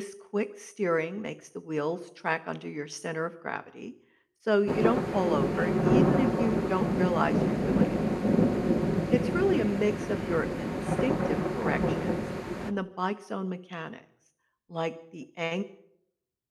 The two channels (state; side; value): identical; both; correlation 1.00